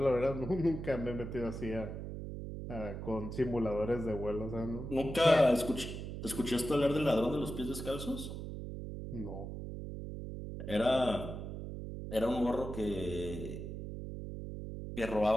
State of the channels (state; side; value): noise; right; hum, 7 dB below the sound